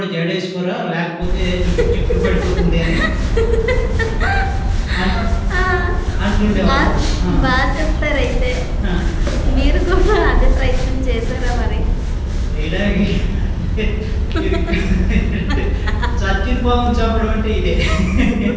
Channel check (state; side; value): identical; both; correlation 1.00